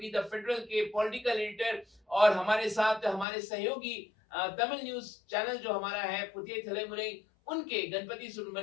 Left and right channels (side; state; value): right; drops out; at 3.2 s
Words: द फेडरल के पॉलिटिकल एडिटर, और हमारे साथ हमारे सहयोगी तमिल न्यूज चैनल जो हमारा है पुतिय थलेमुरे, उनके गणपति